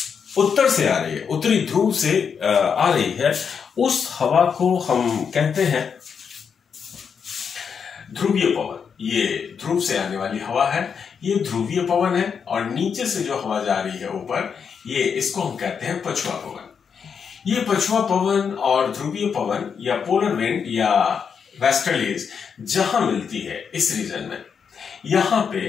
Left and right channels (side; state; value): right; quieter; 6.6 dB